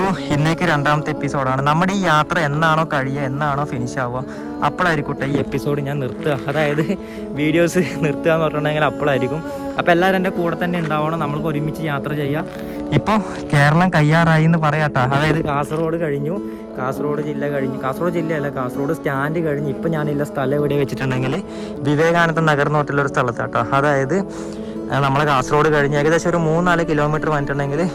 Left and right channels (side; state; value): both; identical; correlation 1.00